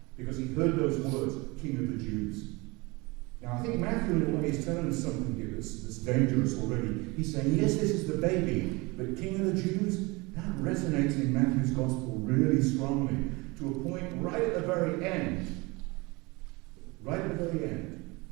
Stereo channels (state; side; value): quieter; left; 25.1 dB